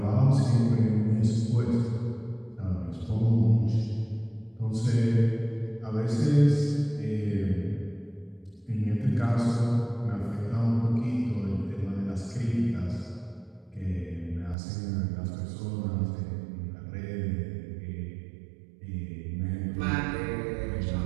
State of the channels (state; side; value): drops out; left; at 14.6 s